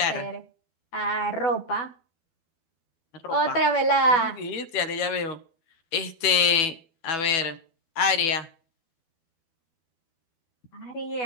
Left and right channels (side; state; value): right; late; 12 ms